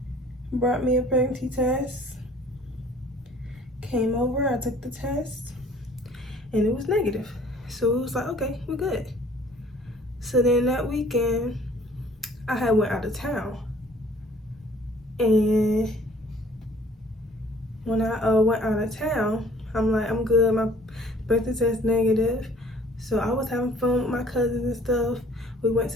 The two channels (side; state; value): both; normal; correlation 0.54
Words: me a pregnancy test. Came over, I took the test, and it was negative. So it was like, okay, we're good. So then that weekend, I had went out of town. And when I went out of town, I'm like, I'm good, my pregnancy test negative. So I was having fun with my cousins and stuff. We went